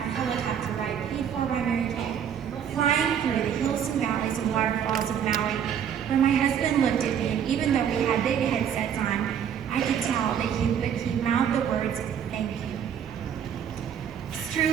helicopter ride paid for by Mary Kay, flying through the hills and valleys and waterfalls of Maui, where my husband looked at me, and even though we had big headsets on, I could tell that he mouthed the words, thank you. It's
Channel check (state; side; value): quieter; left; 8.5 dB